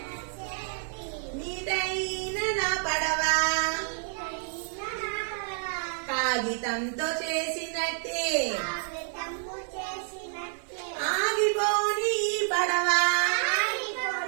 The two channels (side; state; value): left; silent; 59 dB below the other